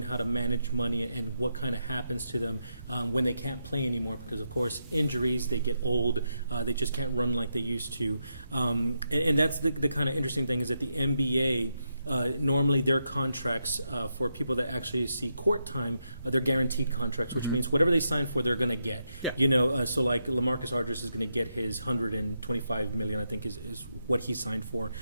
how to manage money and what kind of happens to them when they can't play anymore because, of course, injuries, they get old, they just can't run like they used to. And that's the kind of interesting thing is that the NBA, normally their contracts for people that actually see court time, they're guaranteed contracts, which means whatever they sign for, they're going to get. Yeah. You know, so like LaMarcus Aldridge is going to get his $125 million, I think is what he signed for.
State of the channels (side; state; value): both; inverted; correlation -0.83